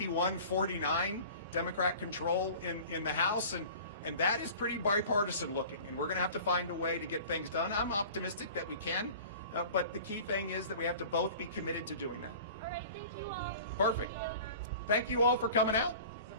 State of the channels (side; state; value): both; inverted; correlation -0.42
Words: Democrat control in the House. And that is pretty bipartisan looking. And we're going to have to find a way to get things done. I'm optimistic that we can. But the key thing is that we have to both be committed to doing that. All right, thank you all. Perfect. Thank you all for coming out.